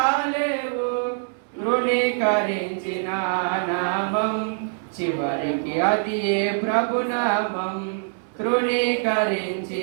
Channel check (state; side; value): silent; left; 63 dB below the other